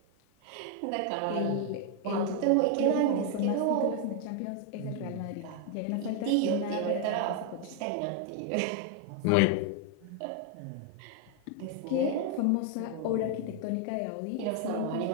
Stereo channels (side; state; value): both; different; correlation 0.00